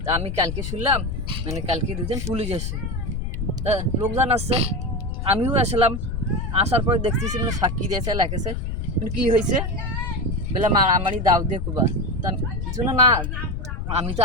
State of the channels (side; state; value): left; noise; rumble, 3 dB below the sound